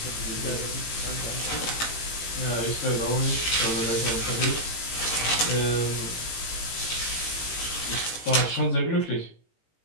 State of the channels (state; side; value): late; right; 18 ms